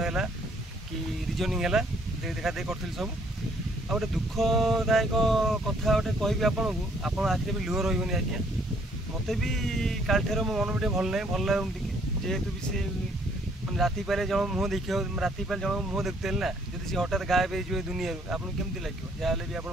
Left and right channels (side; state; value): both; normal; correlation 0.64